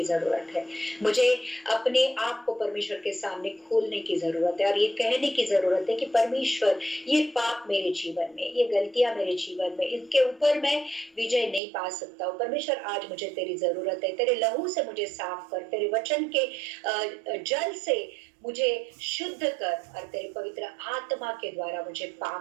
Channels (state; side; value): drops out; left; at 11.6 s